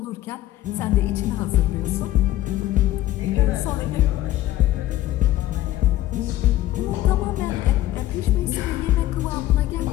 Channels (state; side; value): quieter; right; 14.7 dB